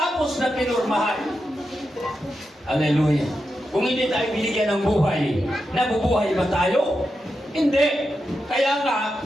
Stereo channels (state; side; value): normal; both; correlation 0.88